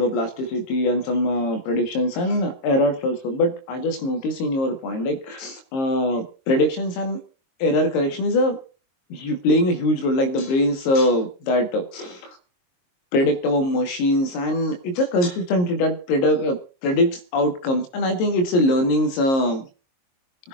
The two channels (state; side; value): late; right; 22 ms